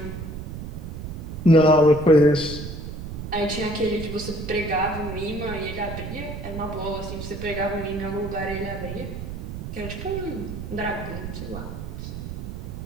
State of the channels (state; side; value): noise; right; rumble, 7 dB below the sound